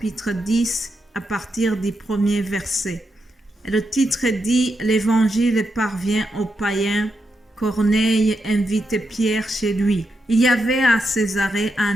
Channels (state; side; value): normal; both; correlation 0.84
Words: 10 à partir du premier verset. Le titre dit « L'Évangile parvient aux païens ». Corneille invite Pierre chez lui. Il y avait à Césarée